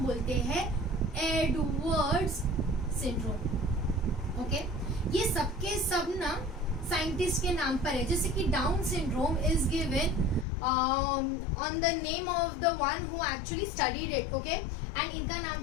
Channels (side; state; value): right; drops out; at 10.5 s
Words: बोलते हैं एडवर्ड्स सिंड्रोम. ओके, ये सबके सब ना साइंटिस्ट के नाम पर है. जैसे कि Down syndrome is given on the name of the one who actually studied it. Okay, and इनका नाम